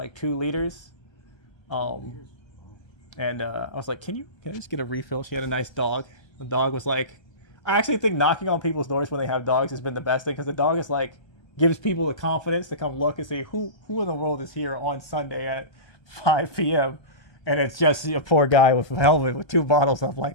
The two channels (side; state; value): right; late; 1.3 ms